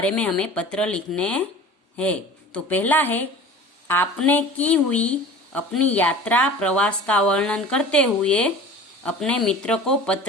में हमें पत्र लिखने हैं। तो पहला है, आपने की हुई अपनी यात्रा प्रवास का वर्णन करते हुए अपने मित्र को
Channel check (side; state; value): both; normal; correlation 0.40